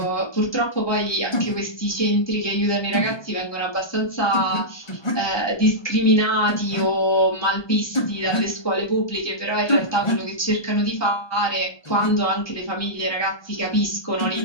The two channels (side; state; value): right; late; 1.2 ms